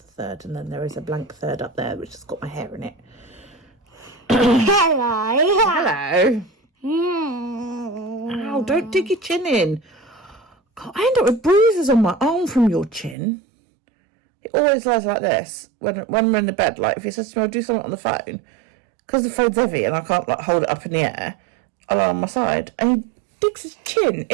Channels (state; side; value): drops out; left; at 13.2 s